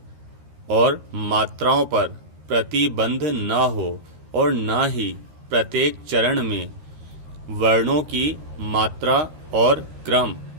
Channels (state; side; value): late; left; 13 ms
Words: और मात्राओं पर प्रतिबंध न हो और न ही प्रत्येक चरण में वर्णों की मात्रा और क्रम